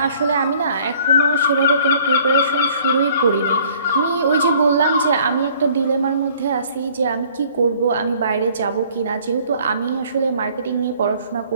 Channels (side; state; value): both; inverted; correlation -0.56